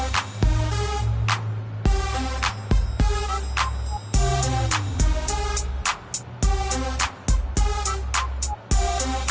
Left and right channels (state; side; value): identical; both; correlation 1.00